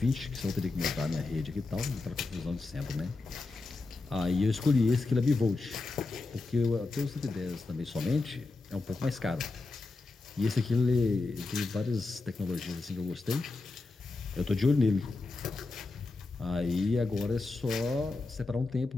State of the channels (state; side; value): quieter; right; 3.5 dB